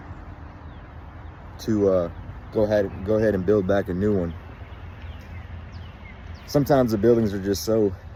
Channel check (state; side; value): identical; both; correlation 1.00